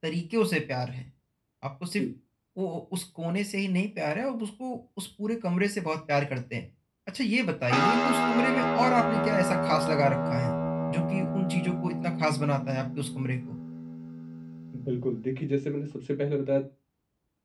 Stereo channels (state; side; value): identical; both; correlation 1.00